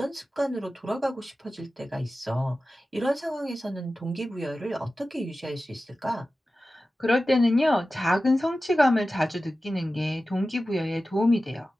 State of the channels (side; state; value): both; normal; correlation 0.95